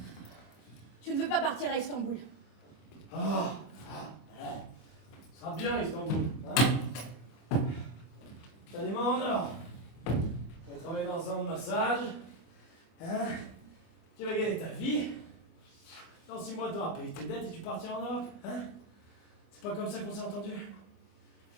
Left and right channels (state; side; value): late; right; 25 ms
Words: Tu ne veux pas partir à Istanbul. Ah, ce sera bien Istanbul, hein? T'as des mains en or. On va travailler dans un salon de massage. Hein? Tu vas gagner ta vie. Dans 6 mois, tu auras payé tes dettes et tu partiras en Europe, hein? C'est pas comme ça qu'on s'est entendu?